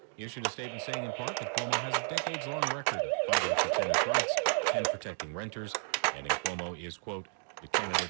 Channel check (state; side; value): silent; left; 56 dB below the other